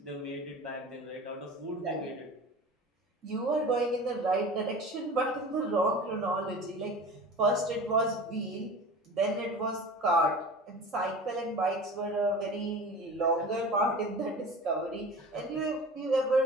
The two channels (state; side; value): normal; both; correlation 0.36